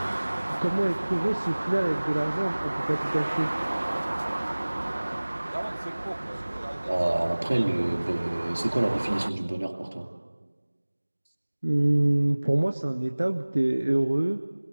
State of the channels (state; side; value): inverted; both; correlation -1.00